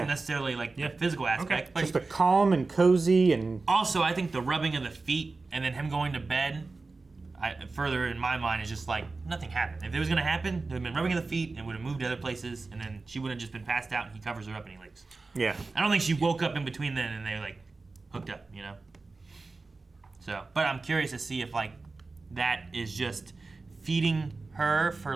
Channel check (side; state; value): left; quieter; 3.7 dB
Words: necessarily like the physical aspect, but Just a calm and cozy and. also I think the rubbing of the feet and then him going to bed. Further in my mind is just like nothing happened. If it was gonna happen, there would have been rubbing of the feet and would have moved to other places, and then she would have just been passed out and he covers her up and he leaves. Yeah. I don't think she woke up in between then and they like hooked up, you know. So, but I'm curious to see if like that is just feeding her for